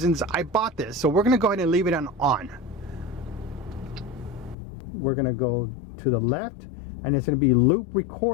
I bought this. So we're going to go ahead and leave it on. We're going to go to the left, and it's going to be loop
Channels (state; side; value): drops out; right; at 4.5 s